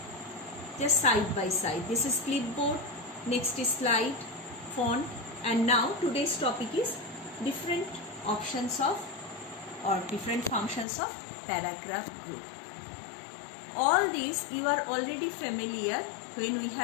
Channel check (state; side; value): drops out; right; at 10.9 s